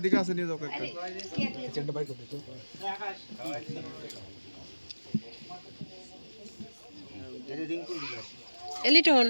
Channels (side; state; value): both; inverted; correlation -1.00